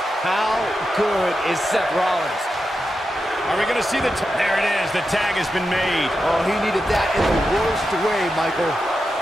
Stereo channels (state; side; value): normal; both; correlation 0.89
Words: How good is Seth Rollins? Are we going to see there it is. The tag has been made. Oh, he needed that in the worst way, Michael.